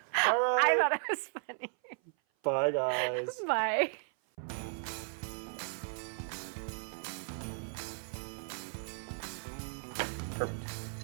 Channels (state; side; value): silent; left; 54 dB below the other